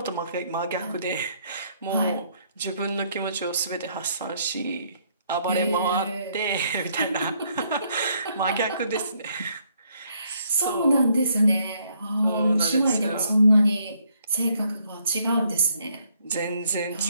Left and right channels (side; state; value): both; inverted; correlation -0.70